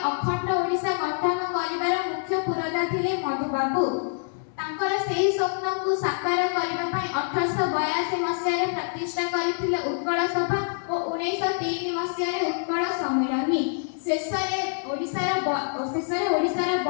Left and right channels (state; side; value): silent; right; 61 dB below the other